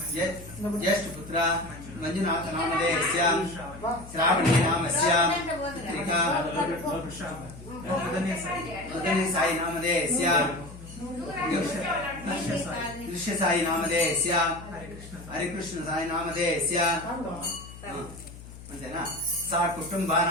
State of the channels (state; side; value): noise; left; hum, 16 dB below the sound